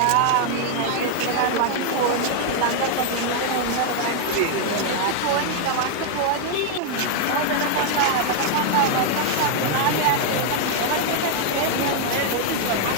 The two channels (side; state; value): both; different; correlation 0.00